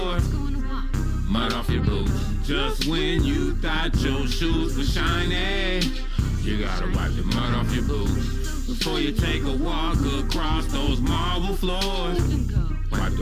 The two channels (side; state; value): both; identical; correlation 1.00